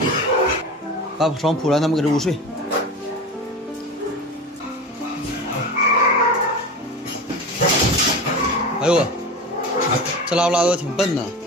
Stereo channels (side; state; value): both; normal; correlation 0.29